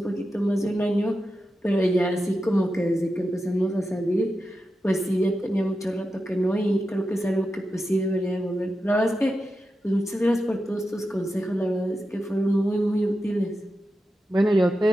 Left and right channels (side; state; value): both; normal; correlation 0.90